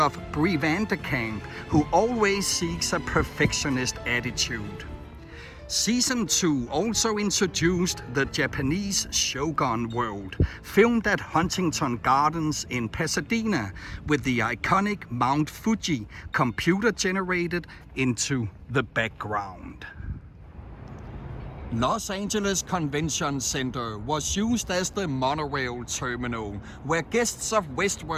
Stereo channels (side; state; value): both; identical; correlation 1.00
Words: of Brie Vanderkamp, who always seeks a perfectionist attitude? Season 2 also introduced the Japanese Shogun world, filmed at Huntington Gardens in Pasadena, with the iconic Mount Fuji computer-generated into the background. Los Angeles Convention Center was used as the monorail terminal, where guests of